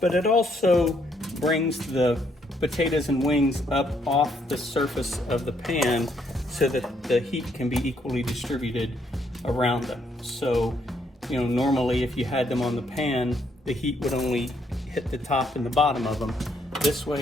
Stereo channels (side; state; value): both; normal; correlation 0.72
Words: but it also brings the potatoes and wings up off the surface of the pan so that the heat can be equally distributed around them. So, you know, normally if you had them on the pan, the heat would only hit the top and the bottom of them. This